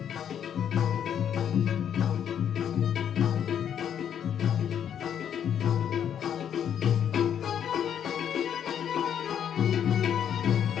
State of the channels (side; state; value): right; quieter; 9.0 dB